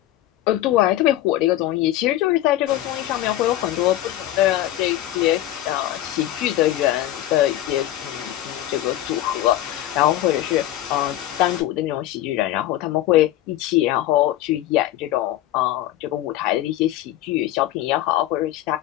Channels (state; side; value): quieter; right; 14.0 dB